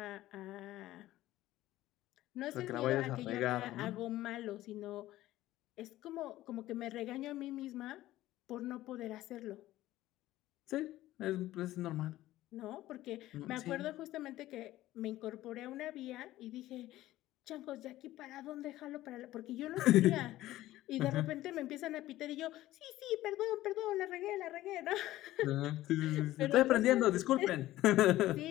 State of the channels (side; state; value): right; quieter; 15.5 dB